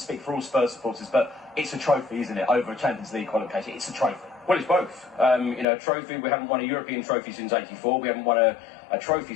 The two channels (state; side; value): drops out; right; at 5.7 s